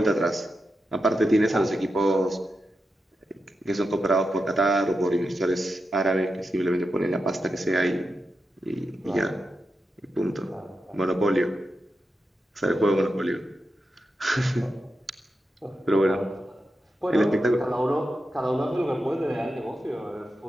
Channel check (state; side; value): normal; both; correlation 0.88